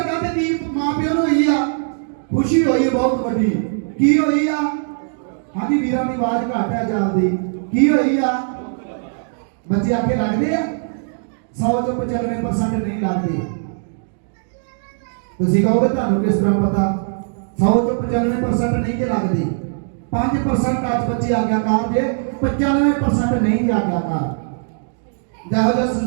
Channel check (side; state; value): left; silent; digital silence